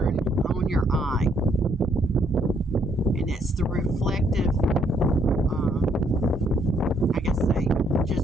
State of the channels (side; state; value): both; normal; correlation 0.70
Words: on your eye. And it's the reflective, I guess